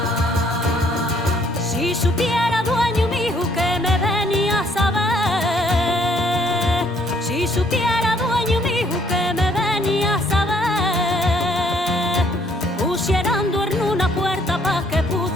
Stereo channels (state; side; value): normal; both; correlation 0.65